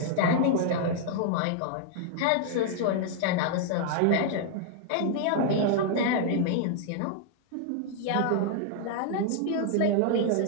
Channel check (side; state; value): both; different; correlation -0.01